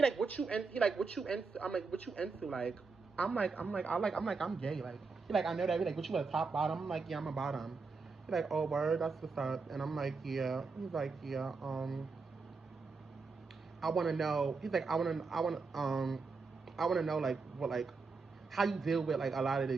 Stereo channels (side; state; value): left; quieter; 4.5 dB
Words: like, what you into? I'm like, what you into? Like, I'm gay. Like, he like, I know that. He like, what you a top bottom? I'm like, yeah, I'm a bottom. He like, oh, word, that's what's up. And I'm like, yeah. He's like, yeah, I want to know. He's like, I want to know like what, like how you deal with like a lot of the